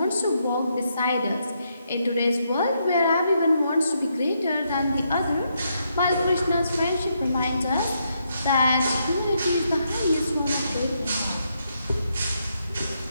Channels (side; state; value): both; inverted; correlation -0.78